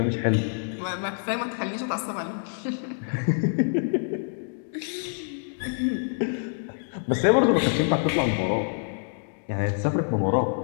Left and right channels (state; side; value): silent; right; 61 dB below the other